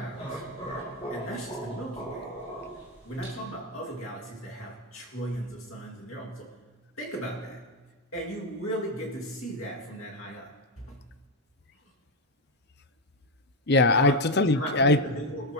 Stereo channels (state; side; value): normal; both; correlation 0.07